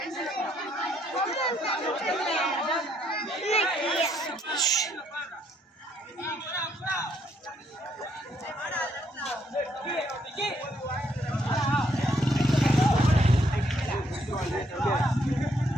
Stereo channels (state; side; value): normal; both; correlation 0.71